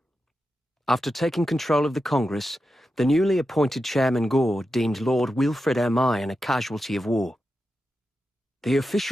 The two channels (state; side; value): normal; both; correlation 0.89